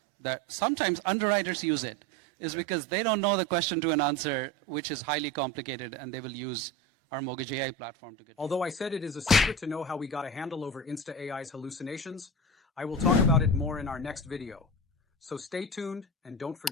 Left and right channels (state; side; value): normal; both; correlation 0.27